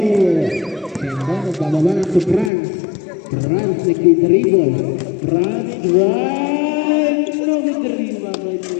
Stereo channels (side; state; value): right; drops out; at 2.5 s